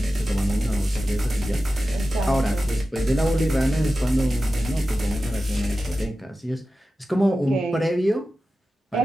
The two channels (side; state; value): both; normal; correlation 0.94